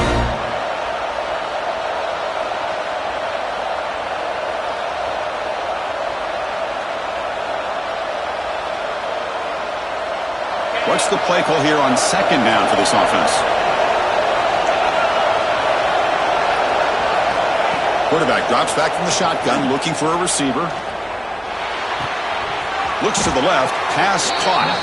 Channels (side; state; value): both; identical; correlation 1.00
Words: What's the play call here on 2nd down for this offense? Quarterback drops back from the shotgun, looking for a receiver. Looks to the left, pass caught.